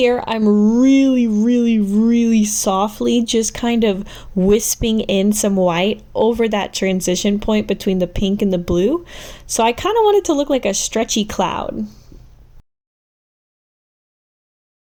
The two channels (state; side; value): identical; both; correlation 1.00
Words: I'm really, really, really softly just kind of wisping in some white over that transition point between the pink and the blue. So I kind of want it to look like a stretchy cloud.